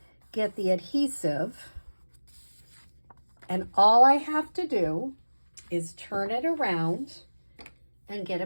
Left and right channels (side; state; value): both; inverted; correlation -1.00